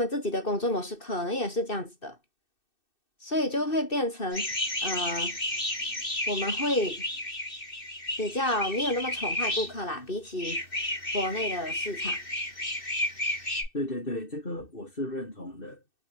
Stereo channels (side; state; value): right; late; 2.6 ms